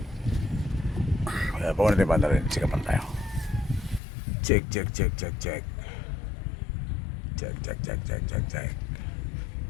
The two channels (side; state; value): right; drops out; at 4.0 s